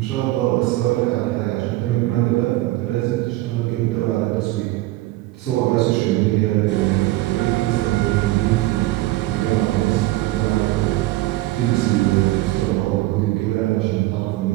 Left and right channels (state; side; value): quieter; left; 17.8 dB